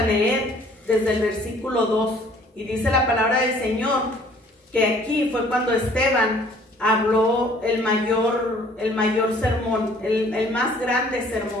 leer desde el versículo 2. Y dice la palabra del Señor que aquí fue cuando Esteban habló el mayor sermón, el más grande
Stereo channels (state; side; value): normal; both; correlation 0.56